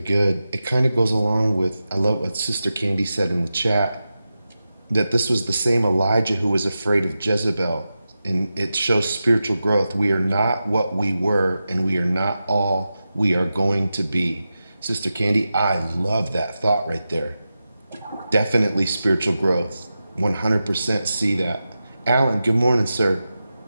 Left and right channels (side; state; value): both; inverted; correlation -0.92